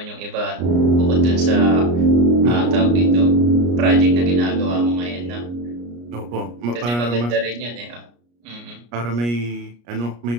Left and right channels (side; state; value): left; late; 34 ms